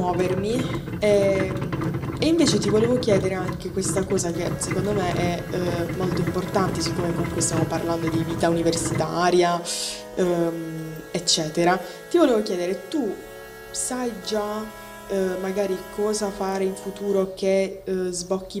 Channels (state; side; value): identical; both; correlation 1.00